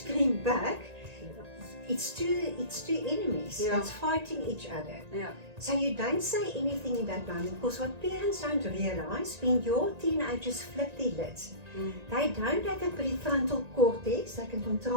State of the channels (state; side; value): late; left; 1.9 ms